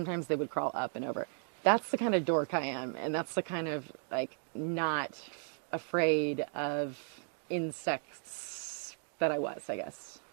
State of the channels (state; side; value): silent; left; 54 dB below the other